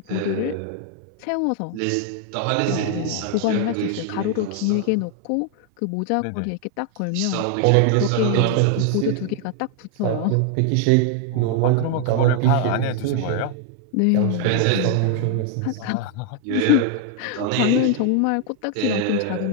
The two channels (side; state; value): both; different; correlation 0.00